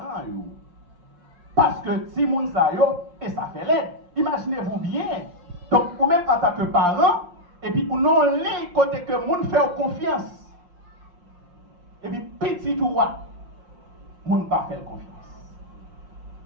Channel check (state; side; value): late; left; 5.7 ms